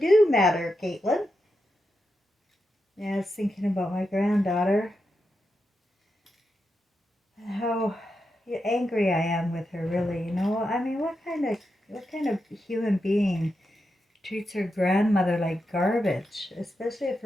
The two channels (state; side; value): normal; both; correlation 0.87